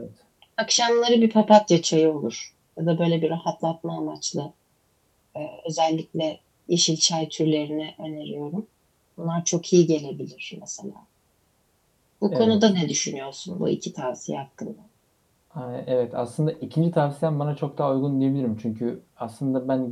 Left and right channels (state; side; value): identical; both; correlation 1.00